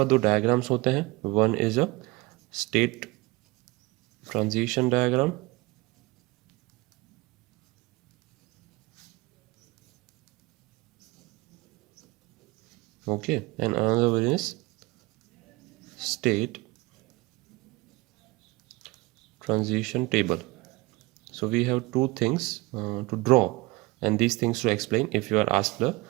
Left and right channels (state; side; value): quieter; left; 22.8 dB